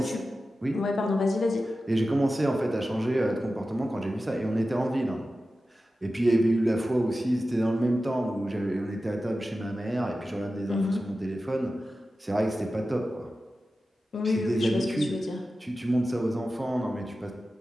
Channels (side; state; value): both; normal; correlation 0.94